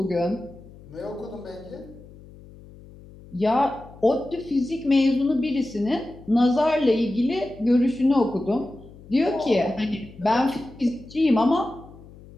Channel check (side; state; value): left; noise; hum, 20 dB below the sound